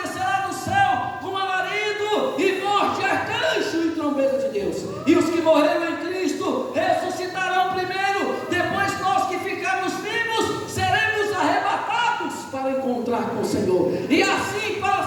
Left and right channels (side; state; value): both; identical; correlation 1.00